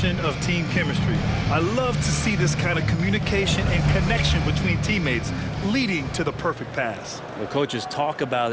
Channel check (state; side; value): identical; both; correlation 1.00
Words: of team chemistry. I love to see this kind of communication and connection between teammates leading to the perfect pass. The coaches talk about